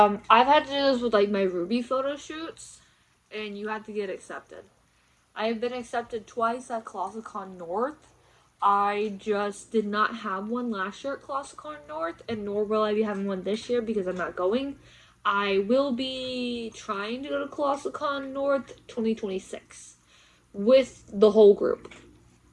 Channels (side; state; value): both; identical; correlation 1.00